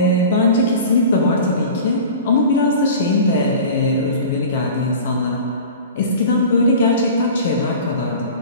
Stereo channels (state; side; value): inverted; both; correlation -0.37